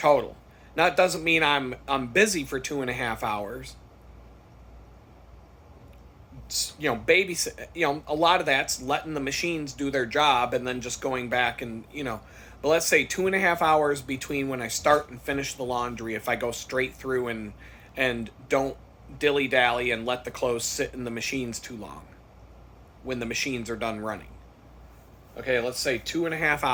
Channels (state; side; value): identical; both; correlation 1.00